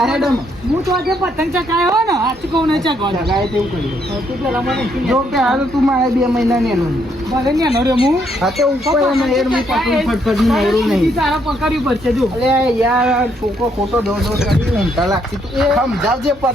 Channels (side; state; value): both; normal; correlation 0.72